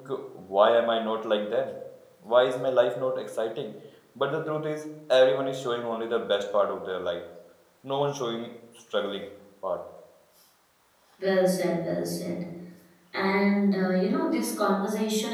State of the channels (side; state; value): both; identical; correlation 1.00